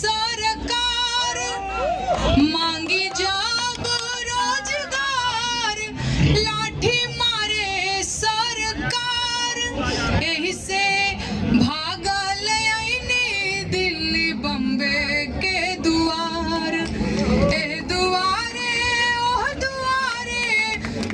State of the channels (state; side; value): identical; both; correlation 1.00